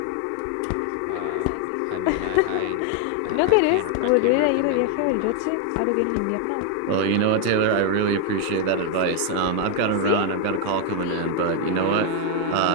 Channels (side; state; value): both; different; correlation 0.00